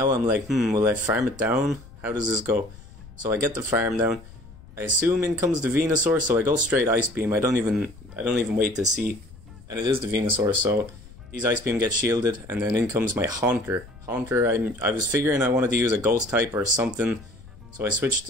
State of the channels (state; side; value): noise; left; rumble, 19 dB below the sound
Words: I'm like, will I farm it down? How does this go? So I get the farm down. I assume in comes the Venusaur, so I go straight Ice Beam. I don't even wait to see, and it is the Venusaur, so these Ice Beam get shielded, and then in comes my Haunter. I was figuring I wanted to use a Ghost type or something, so I